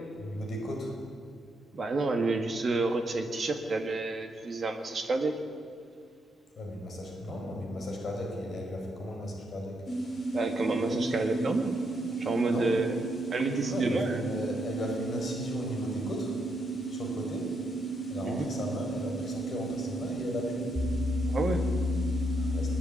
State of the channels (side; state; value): both; normal; correlation 0.78